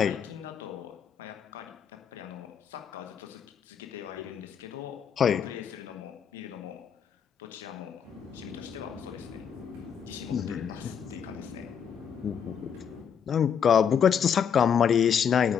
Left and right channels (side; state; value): right; quieter; 7.6 dB